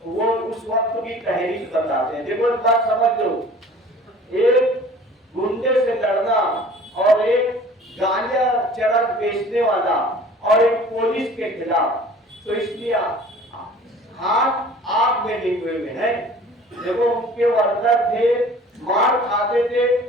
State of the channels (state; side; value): normal; both; correlation 0.47